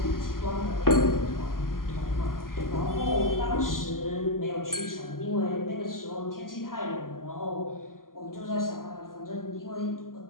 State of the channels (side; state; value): right; late; 0.91 ms